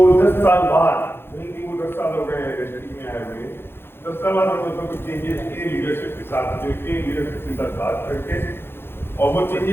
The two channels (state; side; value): late; right; 0.11 ms